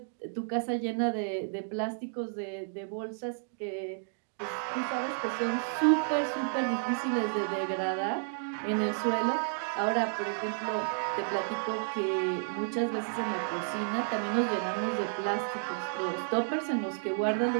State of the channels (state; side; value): silent; left; digital silence